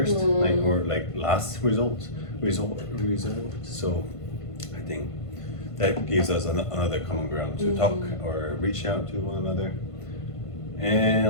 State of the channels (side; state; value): right; late; 1.5 ms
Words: or last result. So I think that gives us another common ground to talk or reach out to one another, and